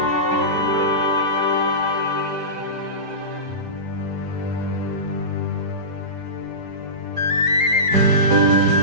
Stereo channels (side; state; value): left; late; 4.7 ms